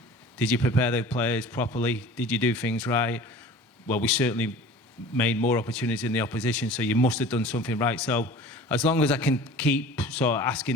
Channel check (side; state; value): both; normal; correlation 0.42